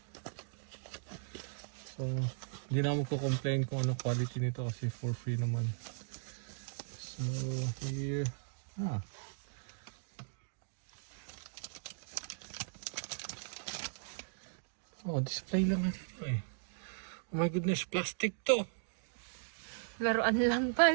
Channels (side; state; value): left; silent; digital silence